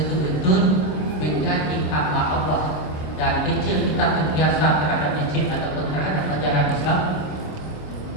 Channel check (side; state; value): right; late; 27 ms